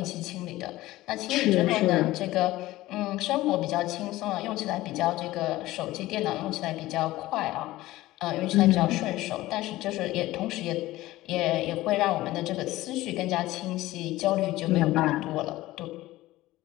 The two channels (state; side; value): quieter; right; 17.1 dB